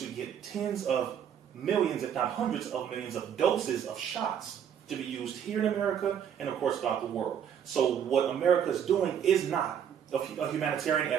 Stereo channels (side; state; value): left; quieter; 8.7 dB